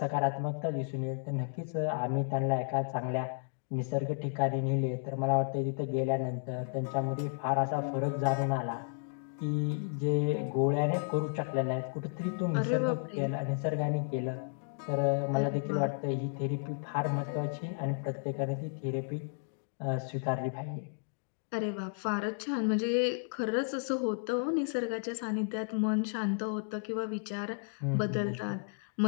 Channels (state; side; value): silent; right; digital silence